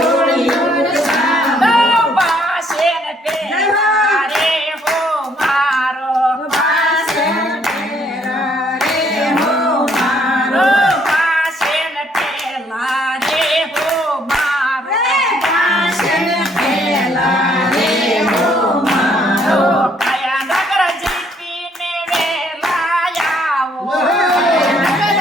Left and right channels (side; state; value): both; normal; correlation 0.66